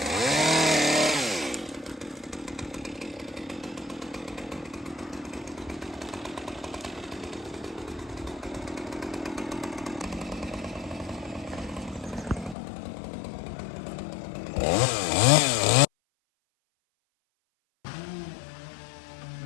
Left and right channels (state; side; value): drops out; right; at 12.6 s